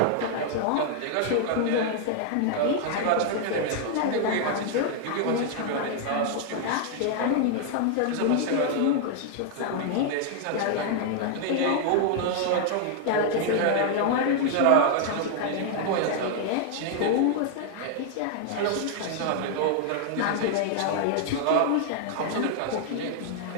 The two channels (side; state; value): both; different; correlation 0.00